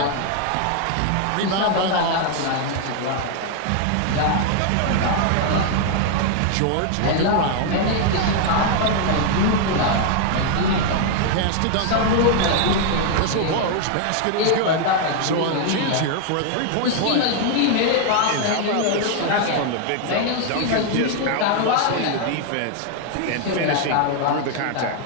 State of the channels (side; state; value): both; different; correlation 0.00